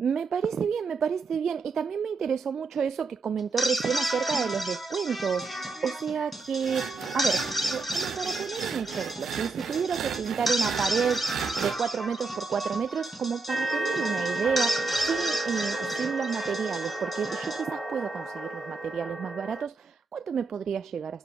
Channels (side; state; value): left; quieter; 4.2 dB